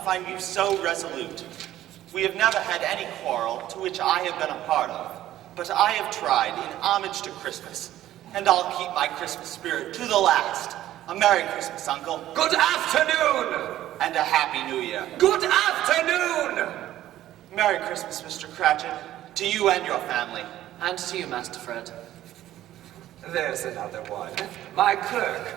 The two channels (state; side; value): quieter; left; 13.5 dB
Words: find you so resolute. We have never had any quarrel to which I have been a part of, but I have tried in homage to Christmas, and I'll keep my Christmas spirit to the last. A Merry Christmas, Uncle. Good afternoon. And a Happy New Year. Good afternoon. Merry Christmas, Mr. Cratchit, to you and your family. And to you, Master Fred. There's another one. My clerk,